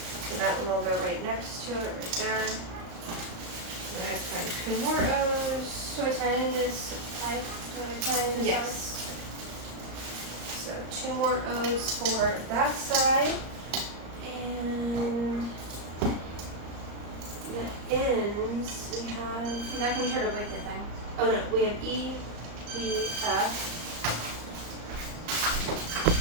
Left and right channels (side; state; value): left; late; 35 ms